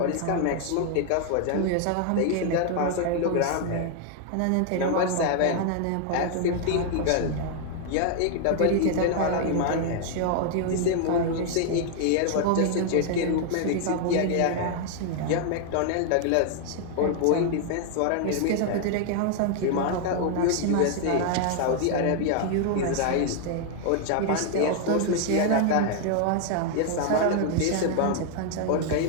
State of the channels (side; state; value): both; different; correlation 0.00